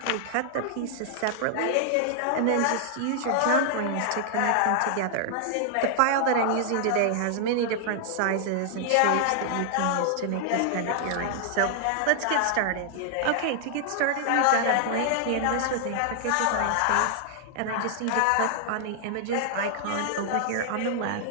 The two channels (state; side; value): different; both; correlation -0.01